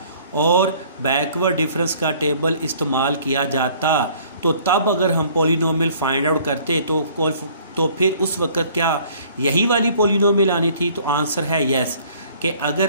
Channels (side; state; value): both; inverted; correlation -0.56